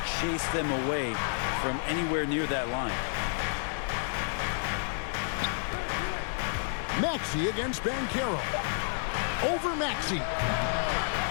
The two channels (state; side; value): silent; right; digital silence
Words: chase them away from anywhere near that line. Maxey against Banchero. Over Maxey.